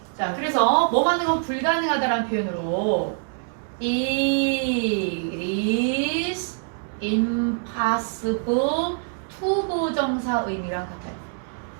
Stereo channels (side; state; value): left; silent; 62 dB below the other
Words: 자, 그래서 뭐 하는 건 불가능하다라는 표현으로 it is impossible to 부정사 의미랑 같아요.